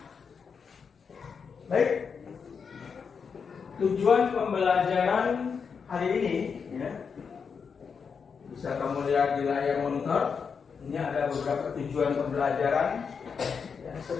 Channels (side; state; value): right; quieter; 6.0 dB